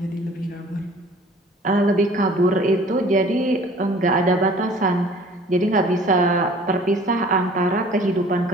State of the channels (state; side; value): normal; both; correlation 0.50